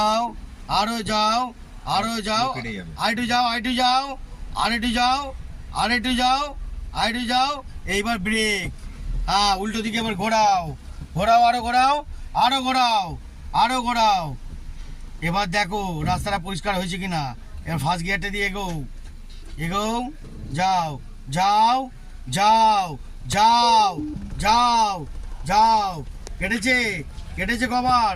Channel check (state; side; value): identical; both; correlation 1.00